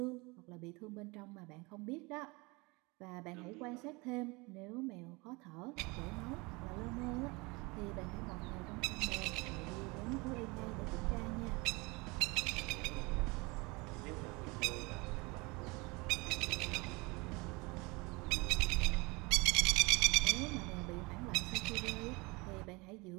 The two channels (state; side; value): quieter; left; 26.0 dB